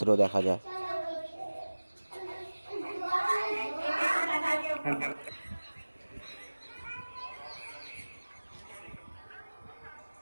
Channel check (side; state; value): both; inverted; correlation -1.00